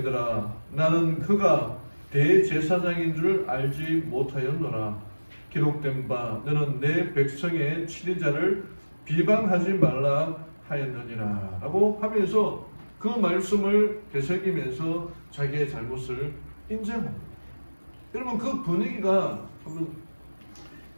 나는 그가 대제사장인 줄 알지 못하였노라. 기록된 바 너는 내 백성의 치리자를 비방하지 말라 하였느니라 라고 하면서 그 말씀을 되새기면서 자기의 잘못을 인정합니다. 여러분, 그 분위기가,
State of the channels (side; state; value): both; inverted; correlation -1.00